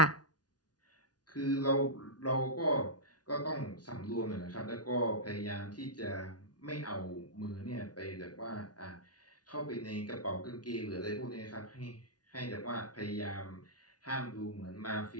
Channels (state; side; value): late; right; 0.69 ms